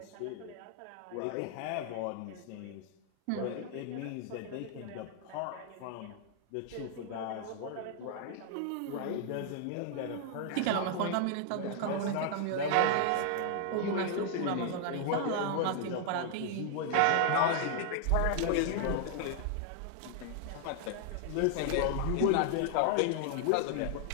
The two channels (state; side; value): different; both; correlation 0.00